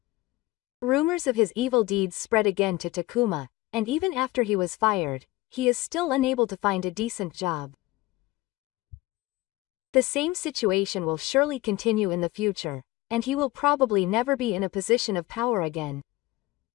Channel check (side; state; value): right; quieter; 19.0 dB